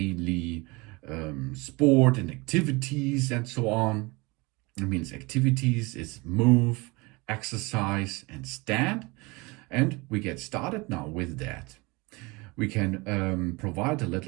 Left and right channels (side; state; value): left; quieter; 25.4 dB